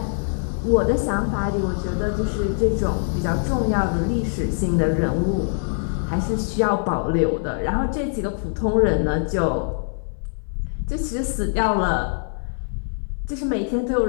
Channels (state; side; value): silent; right; 59 dB below the other